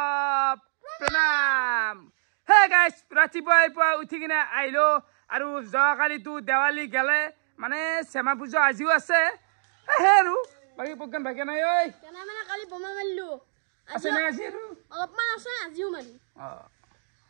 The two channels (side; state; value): left; silent; digital silence